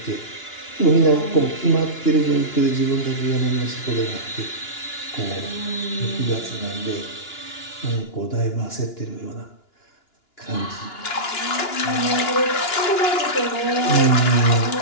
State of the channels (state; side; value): late; right; 2.9 ms